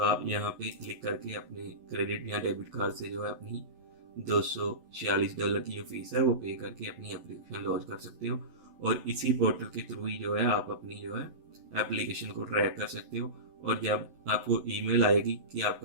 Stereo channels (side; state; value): left; late; 11 ms